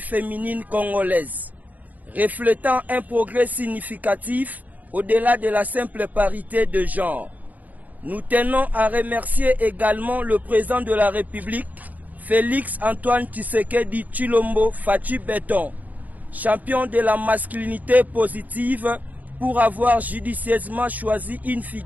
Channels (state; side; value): late; left; 0.079 ms